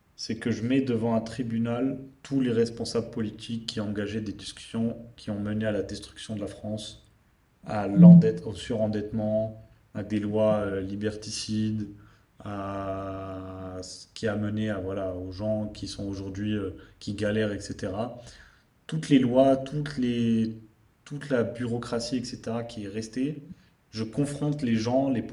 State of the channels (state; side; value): identical; both; correlation 1.00